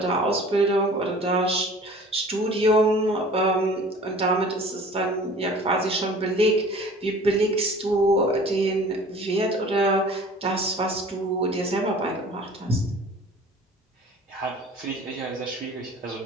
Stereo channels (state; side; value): normal; both; correlation 0.46